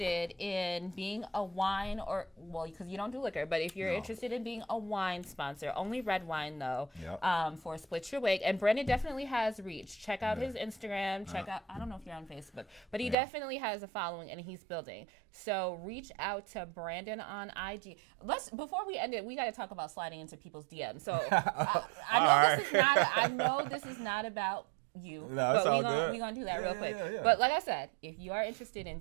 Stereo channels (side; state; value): left; drops out; at 13.2 s